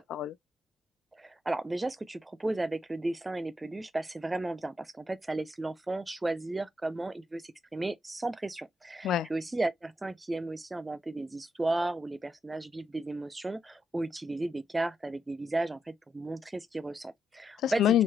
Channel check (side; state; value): both; normal; correlation 0.82